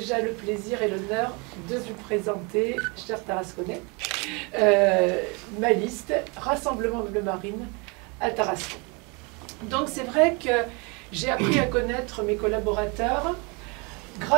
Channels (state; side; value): quieter; left; 30.4 dB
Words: le plaisir et l'honneur de vous présenter, chers Tarasconnais, ma liste Rassemblement Bleu Marine à Tarascon. Donc c'est vrai que j'ai appris à connaître mes collaborateurs